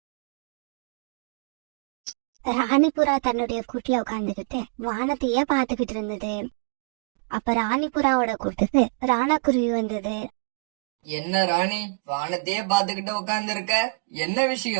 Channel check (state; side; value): silent; left; digital silence